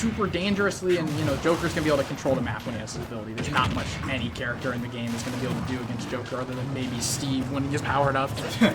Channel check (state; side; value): identical; both; correlation 1.00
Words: dangerously, and, you know, Joker's going to be able to control the map when he has his ability. There's not much any character in the game is going to be able to do against Joker other than maybe Steve when he gets powered up.